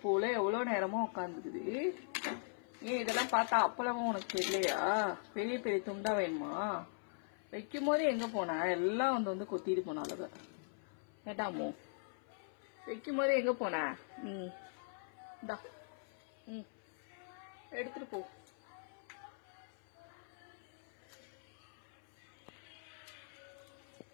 போல எவ்வளவு நேரமா உட்காந்துக்குது. ஏன் இதெல்லாம் பார்த்தா அப்பளமும் உனக்கு தெரியலையா? பெரிய பெரிய துண்டா வேணுமா? வைக்கும் போது எங்க போன? எல்லாம் வந்து கொத்திட்டு போனாலுங்க. கேட்டாமோ வைக்கும் போது எங்க போன? இந்தா எடுத்துட்டு போ.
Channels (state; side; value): silent; right; 51 dB below the other